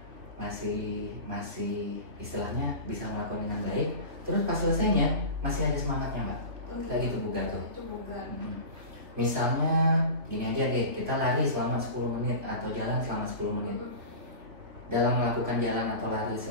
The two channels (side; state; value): left; late; 3.3 ms